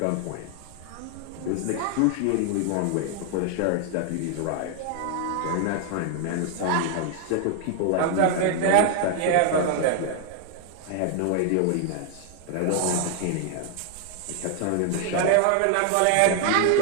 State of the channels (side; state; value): both; different; correlation 0.00